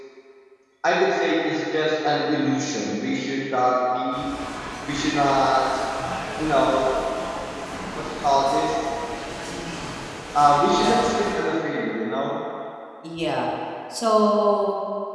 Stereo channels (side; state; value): both; identical; correlation 1.00